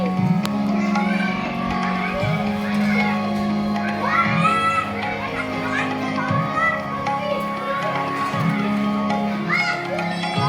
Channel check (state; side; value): identical; both; correlation 1.00